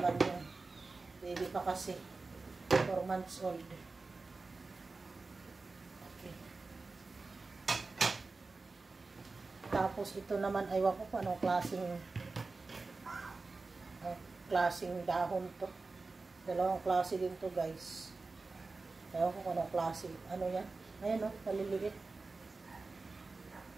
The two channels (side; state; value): left; quieter; 3.8 dB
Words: yung baby pa kasi. 4 months old. Okay. Tapos ito naman, aywan ko kung anong klaseng dahon to. Dalawang klase din to guys. Aywan ko kung anong klase. Ano yan? Ayan o, maliliit.